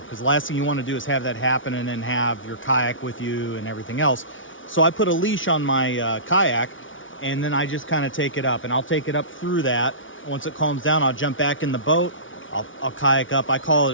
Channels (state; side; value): late; right; 0.57 ms